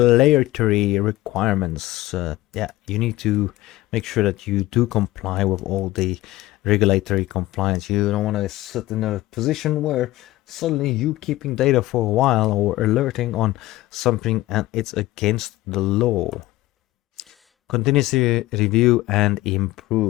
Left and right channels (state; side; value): quieter; right; 17.3 dB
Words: requirements, you need to make sure that you do comply with all the regulatory compliance. You don't want to sit in a position where suddenly you keeping data for a while or alerting on something and it's against the law. Continuously review and